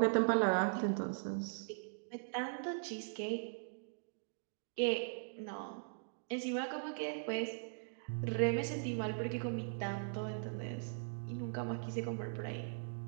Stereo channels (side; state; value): left; silent; digital silence